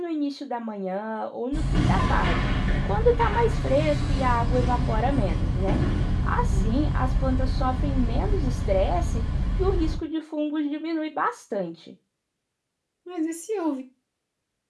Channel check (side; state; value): both; identical; correlation 1.00